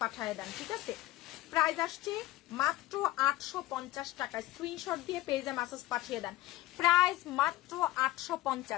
পাঠিয়ে দেন, ঠিক আছে? প্রাইস আসছে মাত্র 850 টাকা। স্ক্রিনশট দিয়ে পেজে মেসেজ পাঠিয়ে দেন। প্রাইস মাত্র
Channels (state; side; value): quieter; right; 17.0 dB